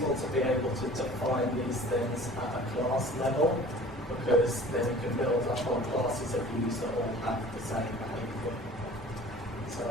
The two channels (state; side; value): normal; both; correlation 0.45